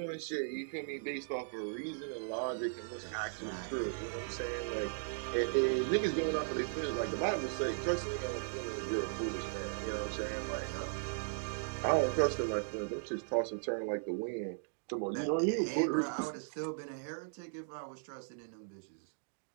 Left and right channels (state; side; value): silent; left; digital silence